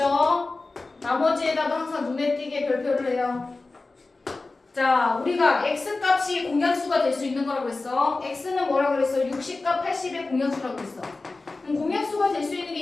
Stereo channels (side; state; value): right; quieter; 3.5 dB